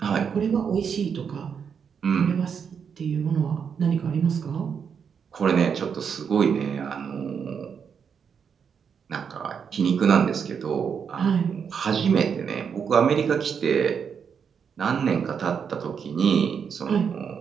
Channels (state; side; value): quieter; left; 6.9 dB